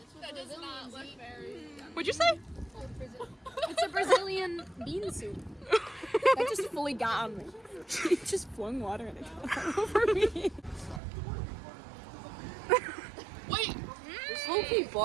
that does not look very. What'd you say? It's a Brazilian bean soup. That just fully got on me. She just flung water in it over me. Wait. This low-key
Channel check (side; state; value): left; drops out; at 11.0 s